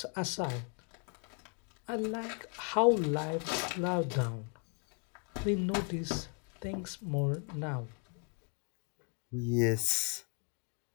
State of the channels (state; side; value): quieter; right; 37.5 dB